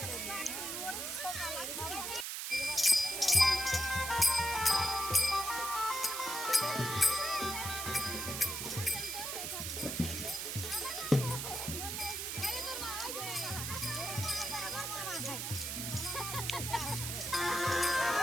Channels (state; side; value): noise; right; hiss, 3 dB below the sound